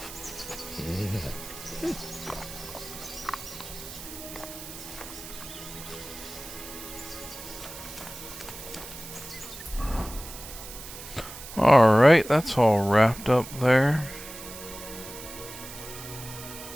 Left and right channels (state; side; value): noise; right; hiss, 12 dB below the sound